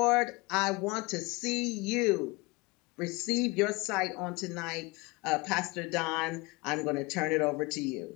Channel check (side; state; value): right; quieter; 24.9 dB